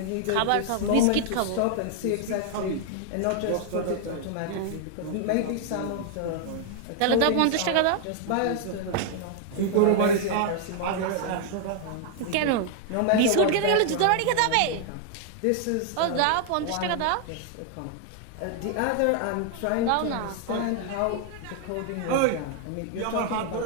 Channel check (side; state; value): both; different; correlation 0.00